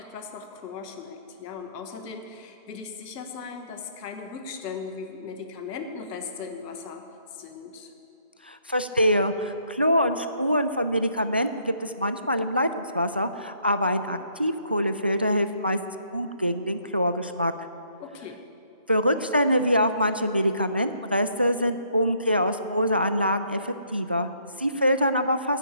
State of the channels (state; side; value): inverted; both; correlation -0.68